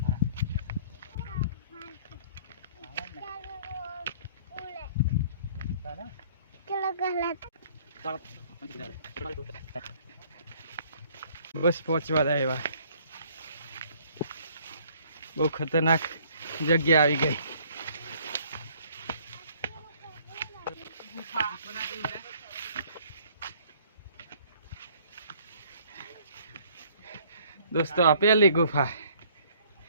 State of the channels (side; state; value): both; inverted; correlation -0.58